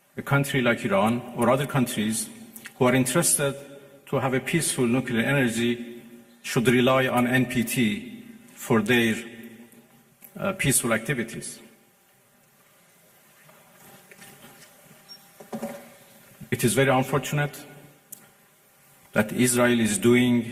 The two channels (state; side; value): identical; both; correlation 1.00